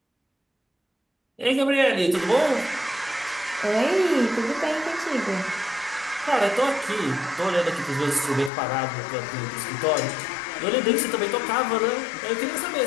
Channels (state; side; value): drops out; right; at 8.5 s